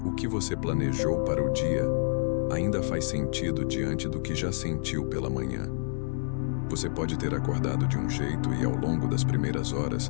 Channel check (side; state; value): right; silent; digital silence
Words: o que você planejou para o dia ainda faz sentido diante do que já sentiu pela manhã. Você pode ter acordado de um jeito e, ao longo das primeiras